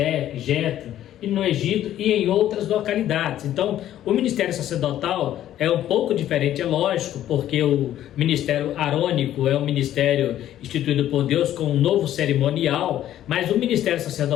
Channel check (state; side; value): quieter; right; 12.1 dB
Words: Jetro, e no Egito e em outras localidades. Então, o ministério sacerdotal é um pouco diferente, é lógico, porque o ministério arônico é um ministério instituído por Deus com um novo cerimonial, mas o ministério